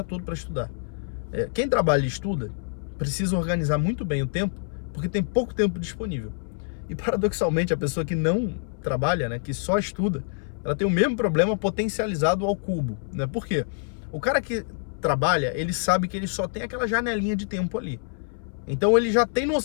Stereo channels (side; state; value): right; silent; 60 dB below the other